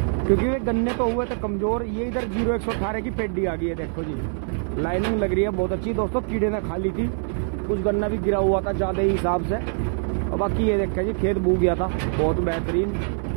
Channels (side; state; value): left; silent; 63 dB below the other